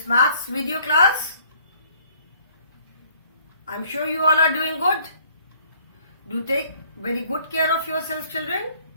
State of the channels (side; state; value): both; inverted; correlation -0.58